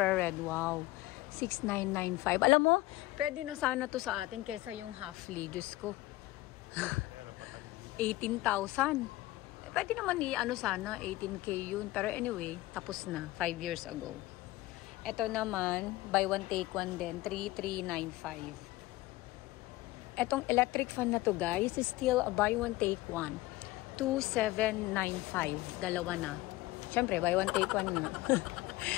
Wow. 6995. Alam mo, pwede na sana to sa atin kaysa yung halfly. Diyos ko. 18,000. Pwede naman ano sana, 18K yun. Pero anyway, tapos na. 5 years ago. Ito naman, buy one take one din, 3395. Etong electric fan na to guys, is still a buy one take one. 2795. Dalawa na. Siyempre, buy one take one na.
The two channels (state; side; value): quieter; right; 18.4 dB